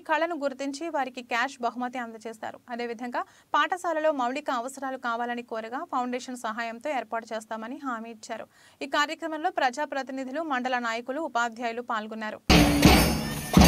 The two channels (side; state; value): both; identical; correlation 1.00